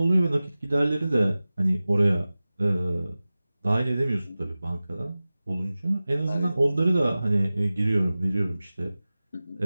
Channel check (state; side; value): inverted; both; correlation -0.97